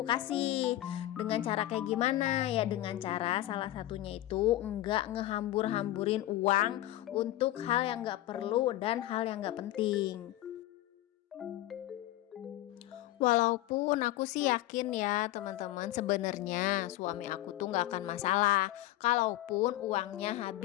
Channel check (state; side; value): quieter; right; 15.3 dB